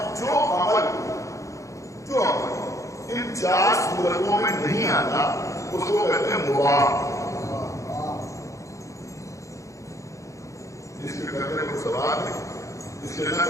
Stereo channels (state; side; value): late; right; 0.15 ms